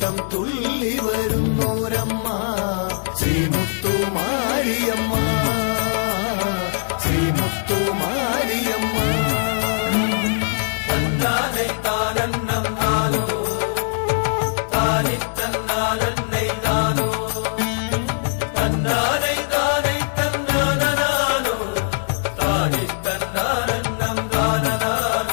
തുള്ളി വരുന്നോരമ്മ, ശ്രീമുത്തുമാരിയമ്മ, ശ്രീമുത്തുമാരിയമ്മ. തന്നാനെ താനന്നം താനോ, താനി തന്നാനന്നെ താനോ, തന്നാനെ താനെ തന്നാനോ, താനി തന്നാനന്നം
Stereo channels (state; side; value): silent; right; digital silence